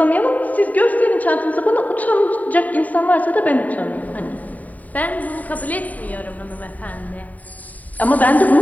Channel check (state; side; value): late; right; 0.074 ms